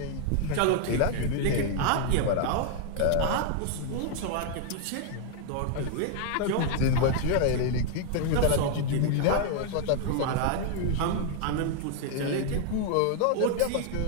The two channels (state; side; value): different; both; correlation 0.00